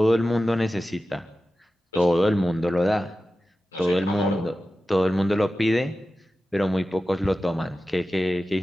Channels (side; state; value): both; normal; correlation 0.94